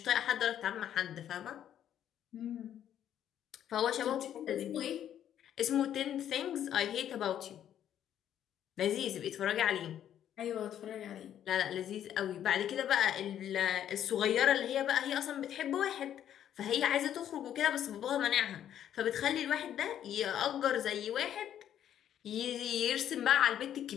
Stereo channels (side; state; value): right; quieter; 10.4 dB